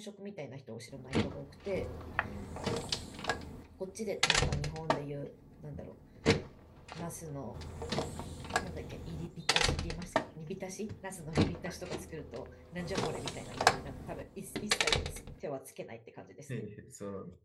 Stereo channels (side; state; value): both; identical; correlation 1.00